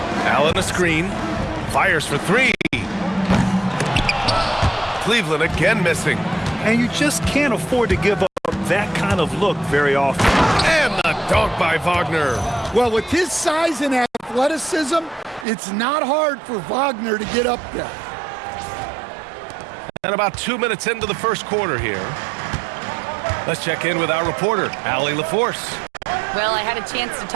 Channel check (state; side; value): drops out; left; at 15.5 s